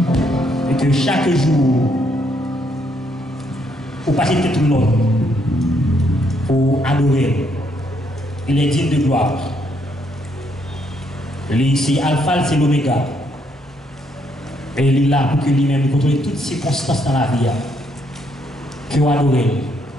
et que chaque jour vous passez tout le monde pour adorer. Il est digne de gloire. C'est Alpha, c'est l'Oméga. Et il est là pour que lui-même contrôle toutes circonstances dans la vie. Que vous adorez.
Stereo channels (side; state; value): both; normal; correlation 0.72